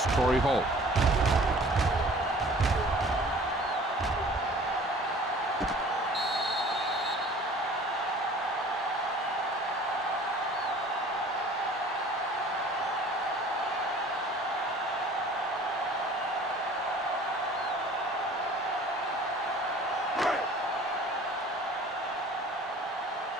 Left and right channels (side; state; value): both; normal; correlation 0.48